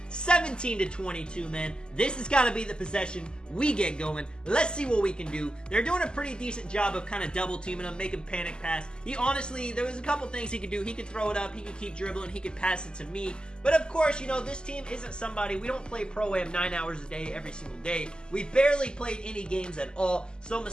17 to 22, man. This has got to be the possession we get going. Let's see what we can do. They're doing a pretty decent job of kind of double teaming him, making panic pass. He honestly, there was a couple things he could do. He could throw it up. He could keep dribbling. He could pass it to me. But of course, you know, this team isn't somebody. We don't play Pro-Am 9 hours a day every single day. We barely played any games at all. So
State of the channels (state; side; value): late; right; 0.047 ms